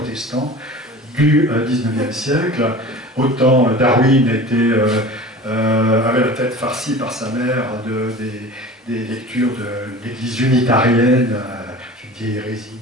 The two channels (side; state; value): both; normal; correlation 0.38